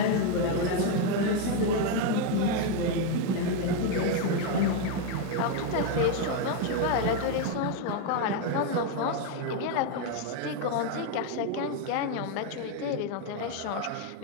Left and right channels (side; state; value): both; different; correlation 0.01